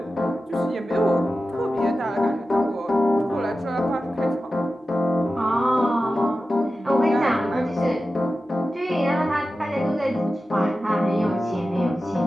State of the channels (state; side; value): normal; both; correlation 0.93